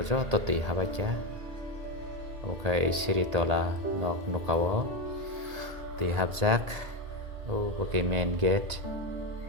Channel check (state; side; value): late; left; 1.8 ms